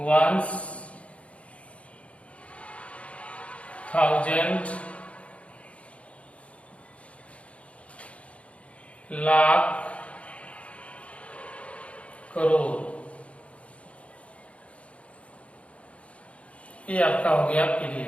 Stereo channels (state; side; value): late; right; 0.063 ms